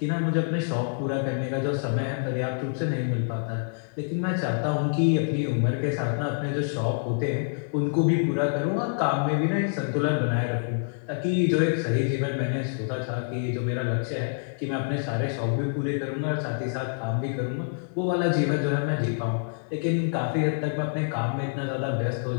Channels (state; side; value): silent; right; digital silence